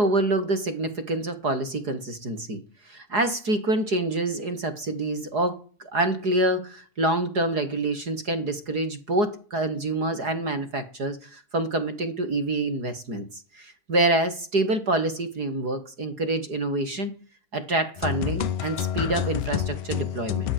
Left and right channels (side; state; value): left; late; 4.8 ms